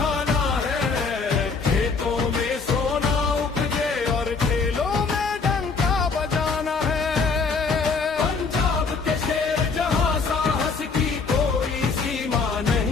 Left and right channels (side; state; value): right; quieter; 4.7 dB